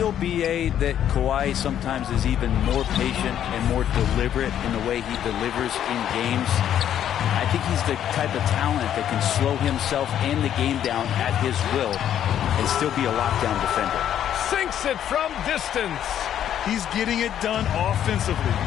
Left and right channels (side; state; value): right; quieter; 10.3 dB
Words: BA, that Kawhi sometimes is even more patient and more deliberate in the way he delivers in games? I think he's the type of talent that can slow himself and the game down at his will and still be a lockdown defender. Sinks it from distance. He's getting it done offensively,